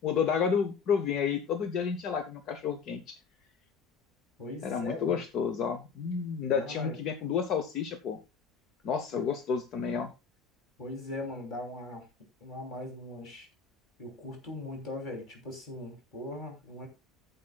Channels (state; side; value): quieter; right; 5.9 dB